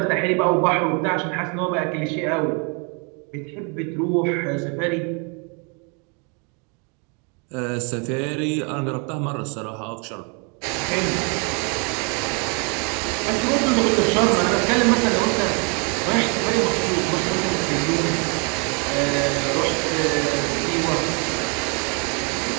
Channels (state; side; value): quieter; left; 34.8 dB